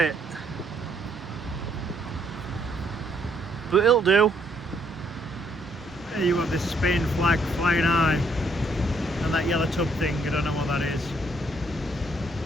But it'll do. There you have this Spain flag flying high, and that yellow tub thing, I don't know what that is.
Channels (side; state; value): both; normal; correlation 0.69